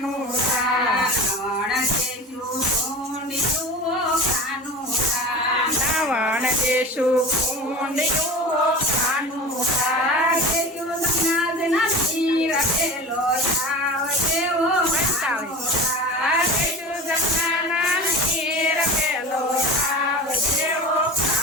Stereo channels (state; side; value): normal; both; correlation 0.33